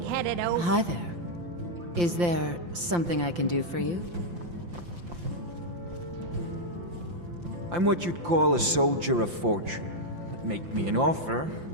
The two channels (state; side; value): late; left; 5.8 ms